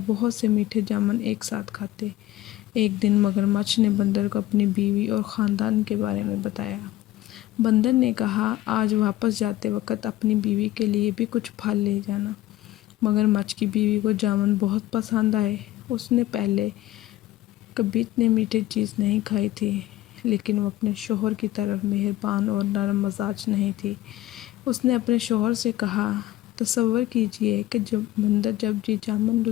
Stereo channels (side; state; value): right; quieter; 15.3 dB